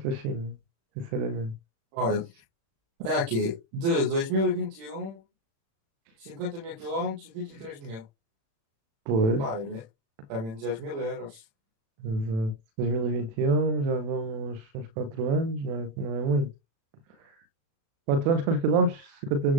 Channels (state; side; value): late; left; 36 ms